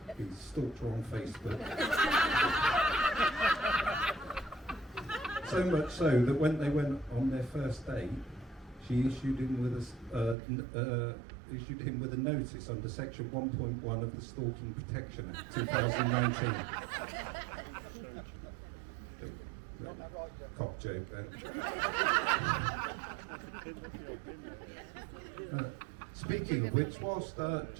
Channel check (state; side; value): drops out; left; at 10.4 s